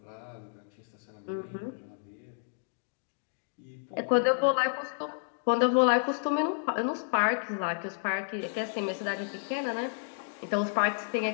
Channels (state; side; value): silent; right; digital silence